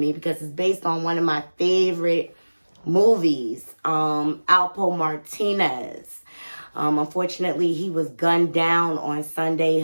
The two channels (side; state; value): both; inverted; correlation -1.00